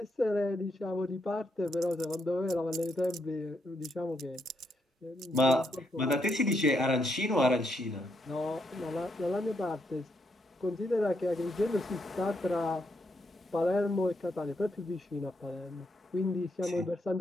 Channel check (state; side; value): normal; both; correlation 0.78